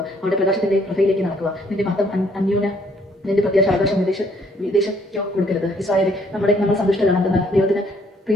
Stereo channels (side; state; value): both; normal; correlation 0.65